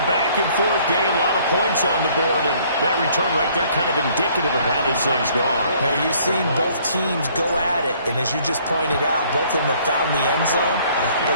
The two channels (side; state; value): both; inverted; correlation -0.60